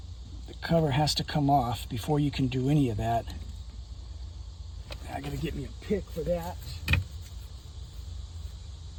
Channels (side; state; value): both; identical; correlation 1.00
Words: The cover has to come off before you can do any of that. I got to get me a pick for that.